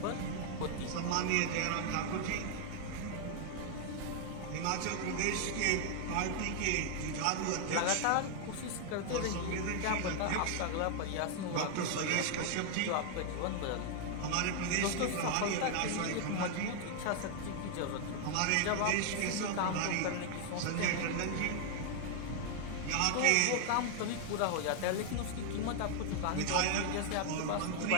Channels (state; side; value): different; both; correlation 0.00